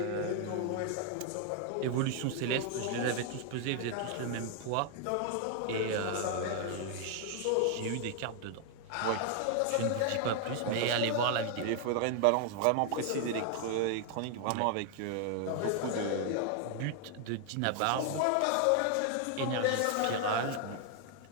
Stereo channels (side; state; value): both; different; correlation 0.00